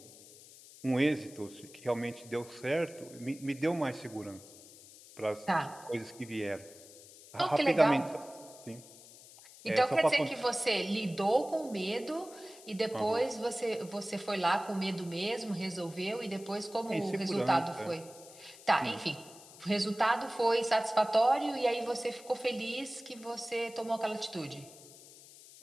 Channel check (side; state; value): left; noise; hiss, 20 dB below the sound